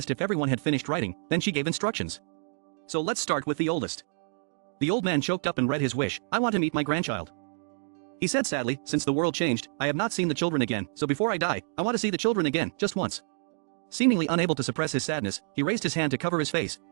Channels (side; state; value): left; silent; digital silence